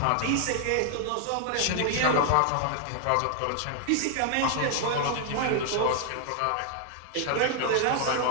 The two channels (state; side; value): different; both; correlation 0.00